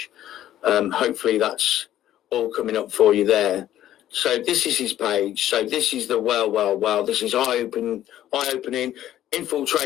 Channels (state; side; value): quieter; right; 12.5 dB